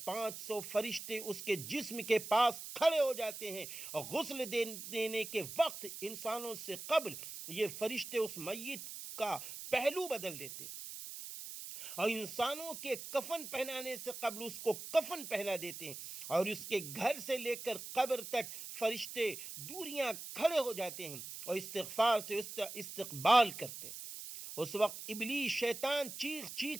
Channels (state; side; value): noise; right; hiss, 9 dB below the sound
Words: 500 فرشتے اس کے جسم کے پاس کھڑے ہو جاتے ہیں، اور غسل دینے کے وقت انسانوں سے قبل یہ فرشتے اس میت کا پہلو بدل دیتے۔ اور انسانوں کے کفن پہنانے سے قبل اس کو کفن پہنا دیتے ہیں، اور اس کے گھر سے لے کر قبر تک فرشتے دوریاں کھڑے ہو جاتے ہیں اور استغفار سے اس کا استقبال کرتے ہیں۔ اس وقت ابلیس شیطان چیخ